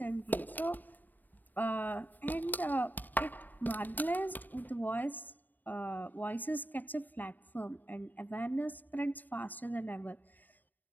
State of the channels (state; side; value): late; right; 0.087 ms